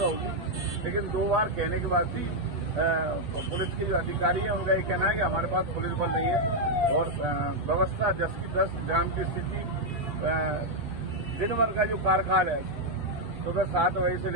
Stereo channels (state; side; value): late; left; 8.2 ms